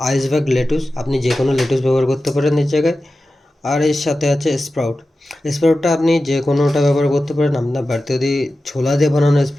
আইসবার্গ লেটুস, আপনি যে কোনো লেটুস ব্যবহার করতে পারেন এর জায়গায়। আর এর সাথে আছে স্প্রাউট। স্প্রাউটটা আপনি যে কোনোটা ব্যবহার করতে পারেন। আপনার বাড়িতে যদি ছোলা দিয়ে বানানো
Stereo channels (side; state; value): both; normal; correlation 0.94